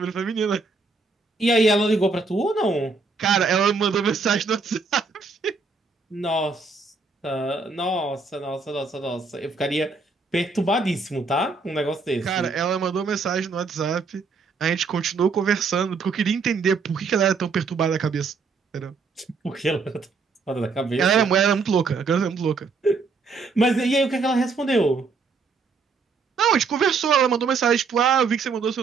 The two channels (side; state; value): left; quieter; 4.5 dB